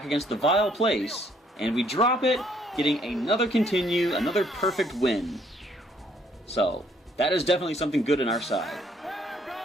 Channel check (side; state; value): both; normal; correlation 0.66